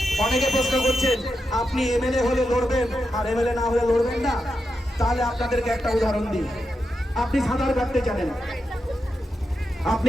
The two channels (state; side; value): normal; both; correlation 0.87